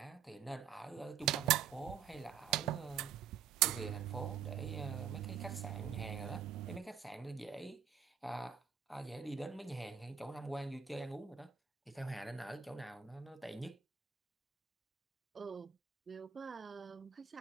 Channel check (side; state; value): left; quieter; 7.7 dB